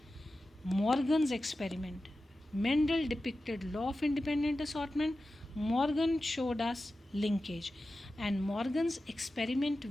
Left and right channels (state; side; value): normal; both; correlation 0.93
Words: Morgan's experiment. Mendel depicted law of independent assortment, Morgan showed us linkage, and Morgan's experiment